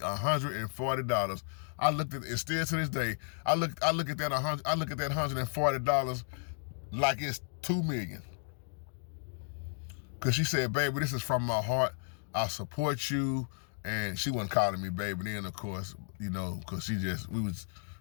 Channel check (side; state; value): right; silent; 55 dB below the other